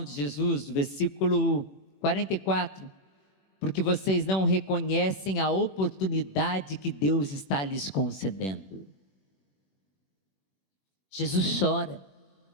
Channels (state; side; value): late; right; 21 ms